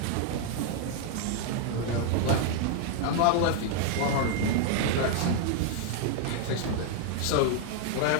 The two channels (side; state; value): both; different; correlation 0.00